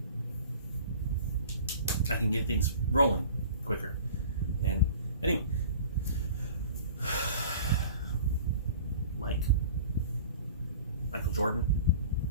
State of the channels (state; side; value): inverted; both; correlation -0.43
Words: can get things rolling quicker. And anyway, Michael Jordan,